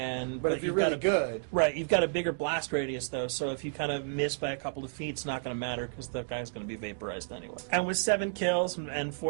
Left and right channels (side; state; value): left; silent; digital silence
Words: if you're really good, right? You've got a bigger blast radius, though, so if you kind of miss by a couple of feet, it's not going to matter because the guy's going to be vaporized anyway. And with 7 kills and